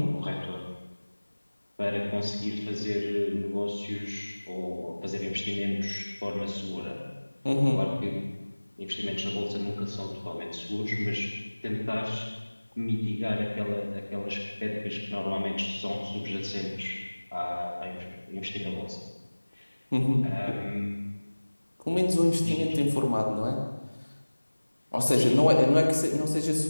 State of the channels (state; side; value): inverted; both; correlation -1.00